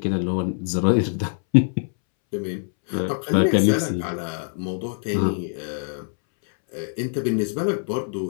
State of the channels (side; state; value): right; silent; 63 dB below the other